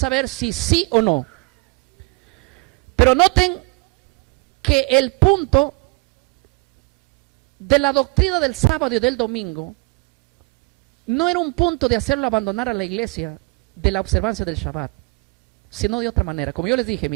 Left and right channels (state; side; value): quieter; left; 28.6 dB